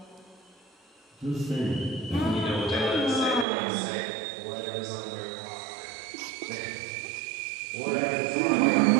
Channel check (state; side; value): drops out; left; at 3.5 s